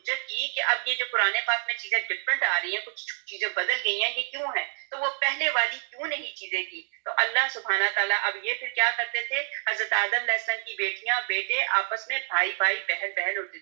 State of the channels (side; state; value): left; silent; digital silence